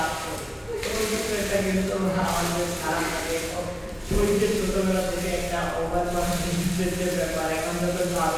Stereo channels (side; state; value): both; identical; correlation 1.00